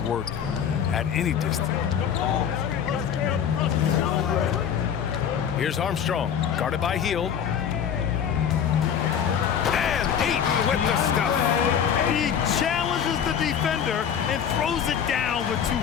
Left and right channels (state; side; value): quieter; right; 8.4 dB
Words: work at any distance. Here's Armstrong, guarded by Hield. And Ayton with the stuff. He challenges the defender and throws it down with